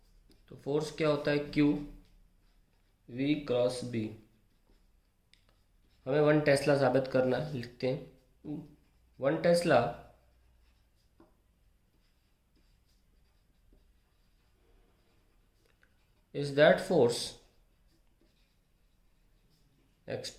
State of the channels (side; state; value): both; identical; correlation 1.00